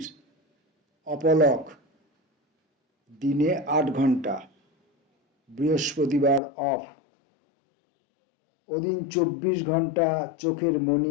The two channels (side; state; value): right; drops out; at 6.4 s